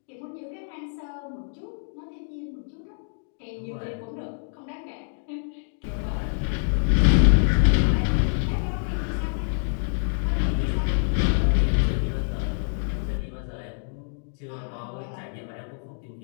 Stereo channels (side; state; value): right; silent; digital silence